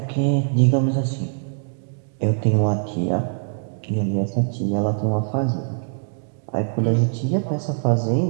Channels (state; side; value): silent; left; digital silence